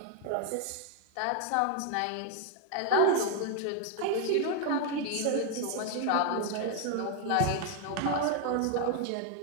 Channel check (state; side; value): different; both; correlation 0.00